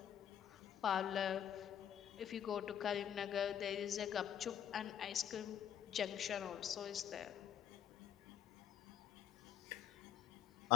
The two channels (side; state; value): right; quieter; 9.6 dB